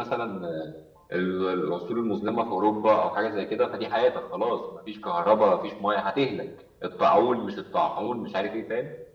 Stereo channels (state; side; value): identical; both; correlation 1.00